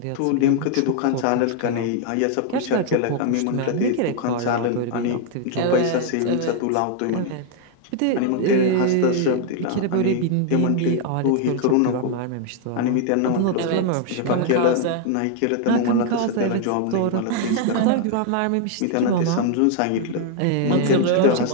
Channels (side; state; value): both; different; correlation 0.00